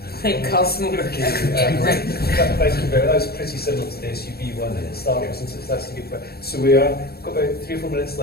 Make cars smaller again. Thank you very much. That was pretty similar to the SUV one at Star Wars, and that's a good point. So we are got about 3 or 4 minutes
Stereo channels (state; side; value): late; right; 0.46 ms